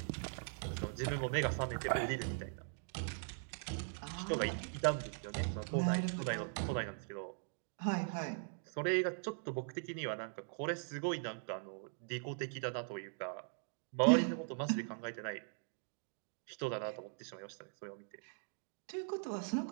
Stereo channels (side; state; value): left; silent; digital silence